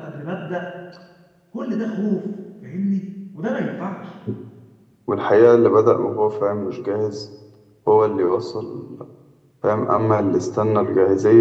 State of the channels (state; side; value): identical; both; correlation 1.00